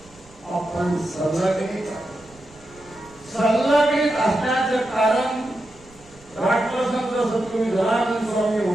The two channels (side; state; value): right; noise; rumble, 26 dB below the sound